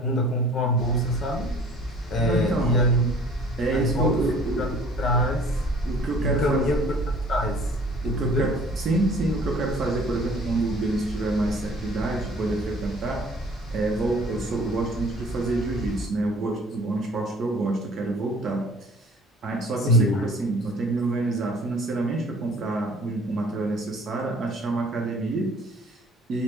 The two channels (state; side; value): normal; both; correlation 0.52